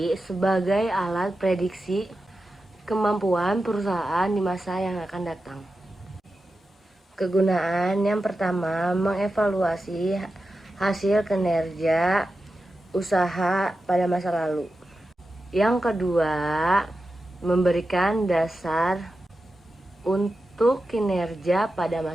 sebagai alat prediksi kemampuan perusahaan di masa yang akan datang. Kegunaan yang pertama, mengevaluasi hasil kinerja usaha pada masa lalu. Yang kedua, memberikan dasar untuk kinerja pada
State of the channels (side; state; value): both; normal; correlation 0.91